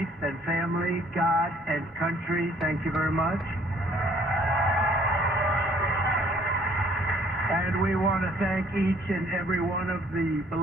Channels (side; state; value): both; normal; correlation 0.60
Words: and family, God and country. Thank you very much. And we want to thank each and every one of the